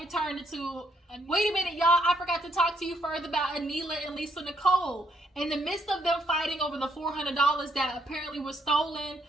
turned into, wait a minute, y'all, I forgot to talk to you further about Anila and Lisa Nicole. In the midst of them fighting over the $400 that apparently was stolen,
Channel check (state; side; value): normal; both; correlation 0.72